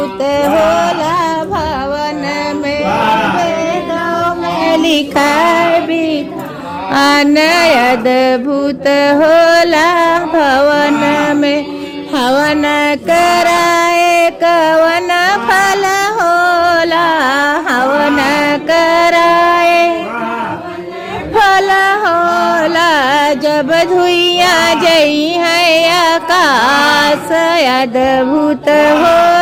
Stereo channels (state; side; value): identical; both; correlation 1.00